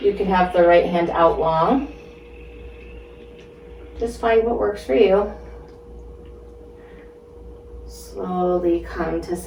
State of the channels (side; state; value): both; identical; correlation 1.00